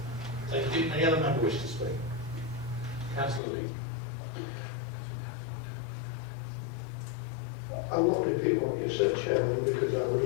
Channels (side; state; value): right; drops out; at 3.4 s